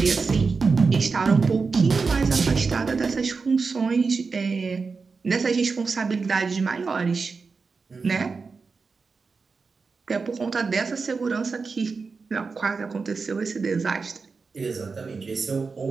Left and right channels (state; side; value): quieter; left; 4.6 dB